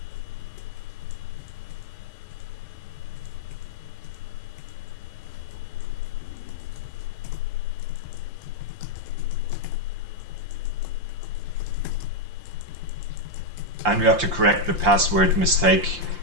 And we have to correct the password mistake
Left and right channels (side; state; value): left; late; 5.7 ms